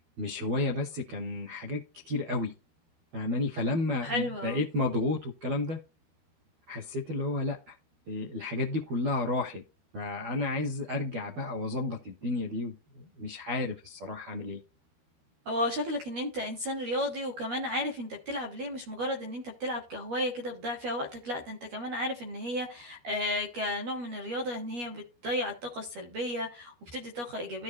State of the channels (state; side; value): late; left; 12 ms